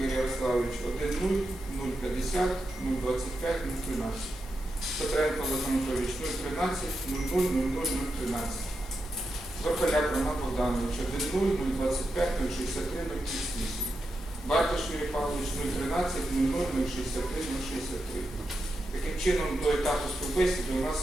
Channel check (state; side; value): normal; both; correlation 0.87